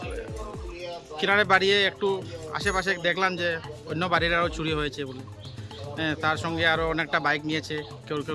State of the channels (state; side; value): identical; both; correlation 1.00